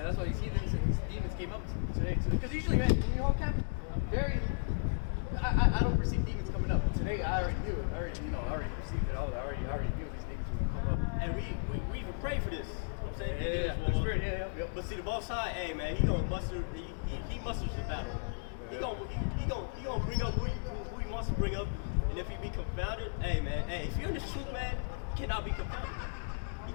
that's why these heathens and these demons came up today. Because usually, man, when you hold camp, I'm very. I don't perceive demons coming up, but today I already knew it. I already perceived it. I already knew these demons were gonna come up. And we even pray for this. You know what I'm saying? Yeah. The spirit, yeah. But see, the boss side, hey man, he gonna muster. He musters the battle. He gonna bring up who he wants to bring up. And if he be confounded, hey man, if you're in the truth, man, you cannot be confounded. You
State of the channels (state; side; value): silent; right; digital silence